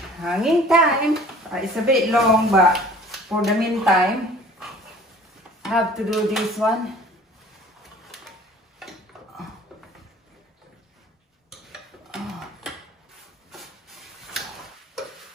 Hanging time. It's a bit long, but for the meantime, I have to do this one.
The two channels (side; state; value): both; normal; correlation 0.49